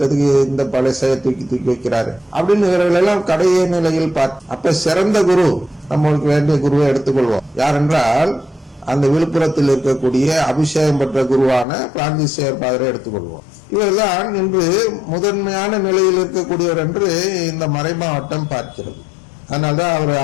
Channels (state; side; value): drops out; right; at 11.7 s